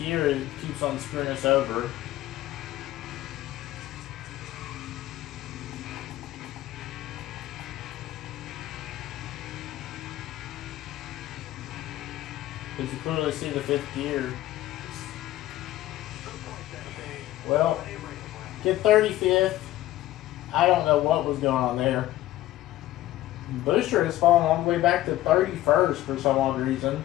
keeps on screwing us over. Because you clearly see the fifth gear. Well, get 35th. I don't know what was going on there. Busher has fallen all the way back to 31st for some odd reason.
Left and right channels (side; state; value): right; quieter; 15.0 dB